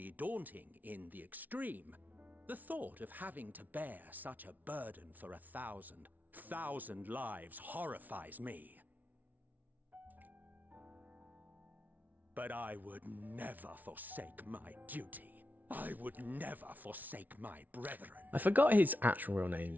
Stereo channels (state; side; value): late; left; 0.079 ms